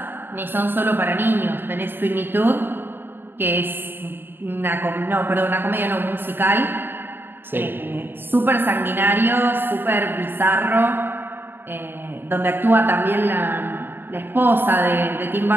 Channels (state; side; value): late; left; 0.099 ms